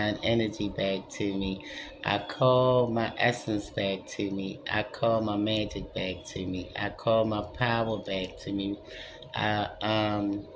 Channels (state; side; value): identical; both; correlation 1.00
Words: energy back to me. I call my essence back to me. I call my magic back to me. I call my power back to me. I um